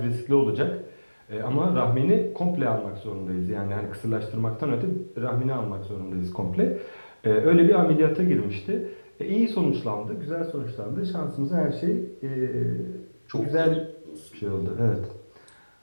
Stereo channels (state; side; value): inverted; both; correlation -1.00